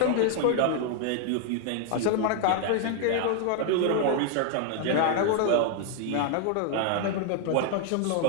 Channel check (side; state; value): both; different; correlation 0.00